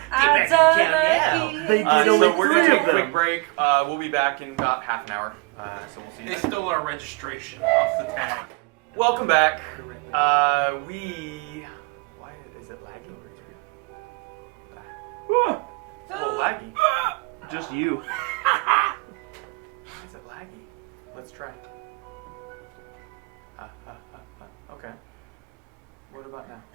done my They keys. did So only we're 3 gonna take of a quick them. break. We'll be back in about half an hour. So we'll see you They then. stole our registration off the tag. Welcome back. Why is it lagging? It's a little laggy. Just you. Is it laggy? Let's try. Okay. What about now?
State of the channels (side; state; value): left; quieter; 27.5 dB